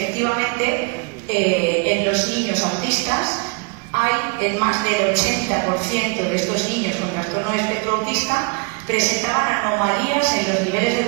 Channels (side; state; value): left; quieter; 32.6 dB